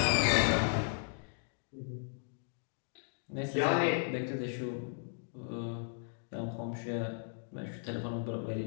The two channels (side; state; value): right; silent; digital silence